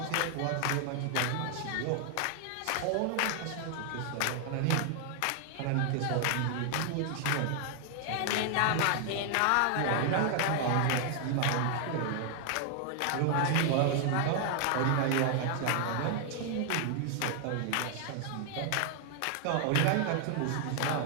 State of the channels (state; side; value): different; both; correlation 0.00